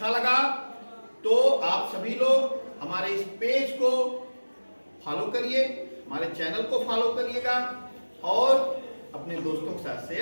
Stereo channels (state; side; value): inverted; both; correlation -1.00